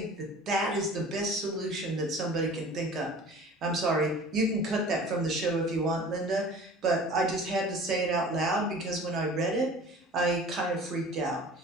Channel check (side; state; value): both; normal; correlation 0.43